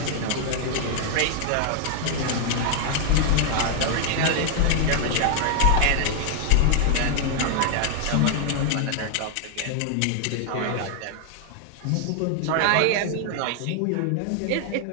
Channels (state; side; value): different; both; correlation 0.00